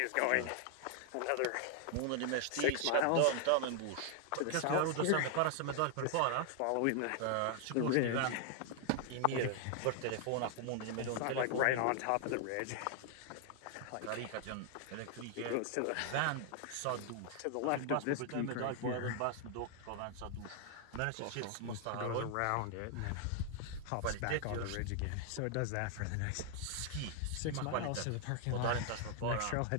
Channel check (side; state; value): both; different; correlation 0.00